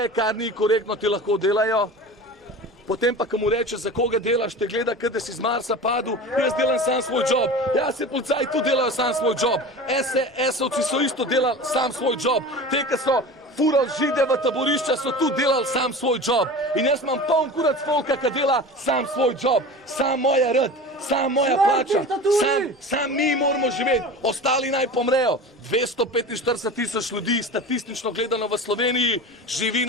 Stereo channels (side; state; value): both; normal; correlation 0.34